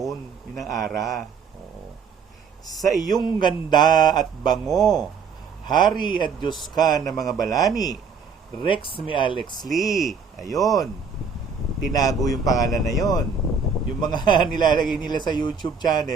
yun ang ara. Oo. Sa iyong ganda at bango, Hari at Diyos ka ng mga balani, Rex mi Alex Lee. Ayun. Tinago yung pangalan na yon. Yung mga nilalagay nila sa YouTube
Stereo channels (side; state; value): left; quieter; 5.5 dB